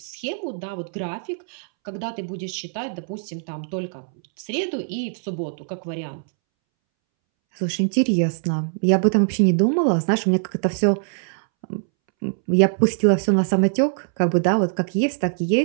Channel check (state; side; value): silent; left; 64 dB below the other